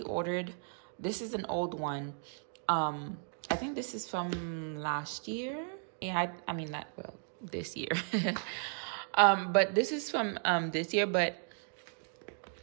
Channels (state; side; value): silent; left; 54 dB below the other